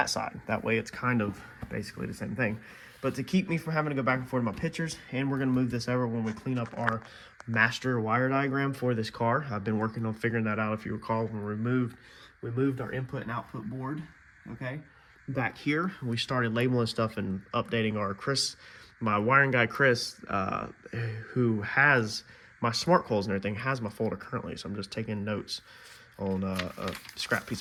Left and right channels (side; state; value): both; identical; correlation 1.00